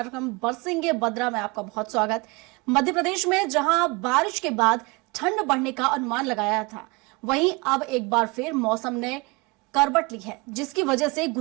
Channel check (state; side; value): quieter; left; 26.7 dB